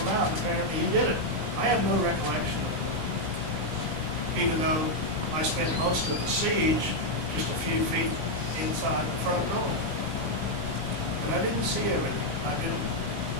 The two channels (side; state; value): left; late; 19 ms